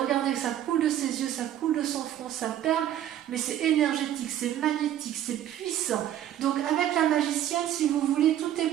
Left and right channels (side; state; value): left; quieter; 11.6 dB